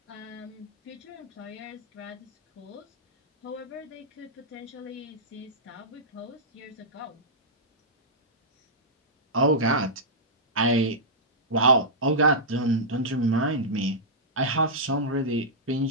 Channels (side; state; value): both; normal; correlation -0.12